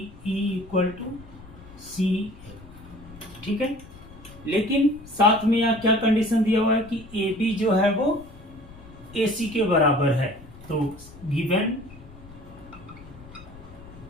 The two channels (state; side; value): noise; left; rumble, 19 dB below the sound